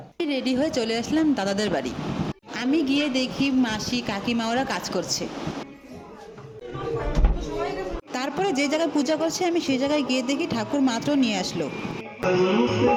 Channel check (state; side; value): identical; both; correlation 1.00